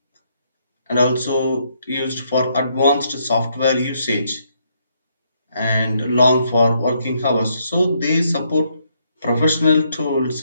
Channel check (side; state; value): both; inverted; correlation -0.73